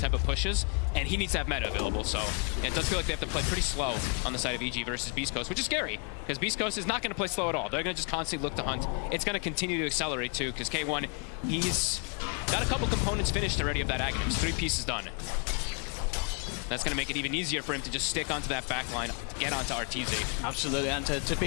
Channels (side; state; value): right; quieter; 38.2 dB